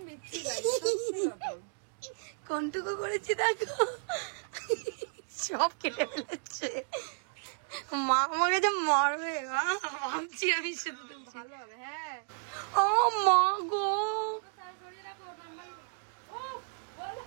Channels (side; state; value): left; silent; 56 dB below the other